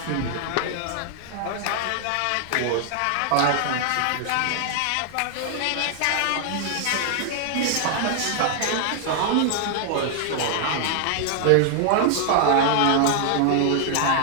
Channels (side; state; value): both; different; correlation 0.00